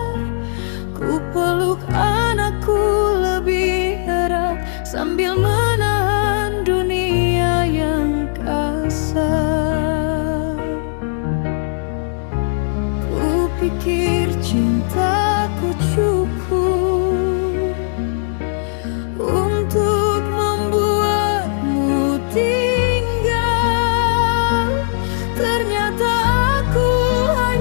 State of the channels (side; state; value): right; silent; 67 dB below the other